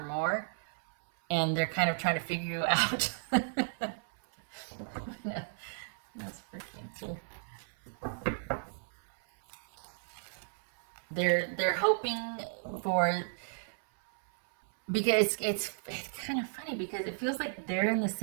more, and they're kind of trying to figure you out. That's freaking cool. They're hoping for, because it's kind of funny, because it feels like they're in the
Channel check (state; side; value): silent; left; 55 dB below the other